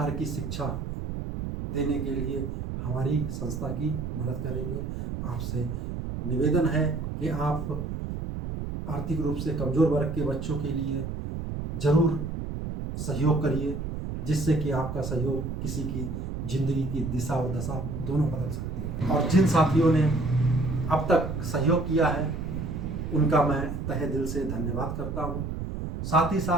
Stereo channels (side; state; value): right; noise; rumble, 5 dB below the sound